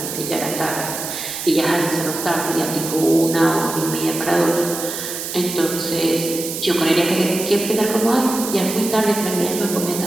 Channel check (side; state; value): right; noise; hiss, 6 dB below the sound